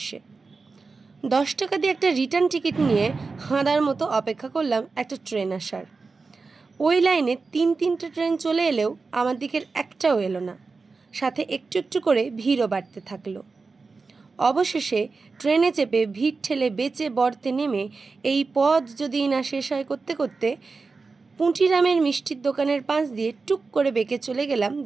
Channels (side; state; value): left; quieter; 4.2 dB